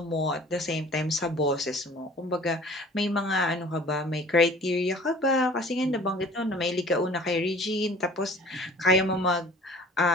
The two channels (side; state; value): both; normal; correlation 0.48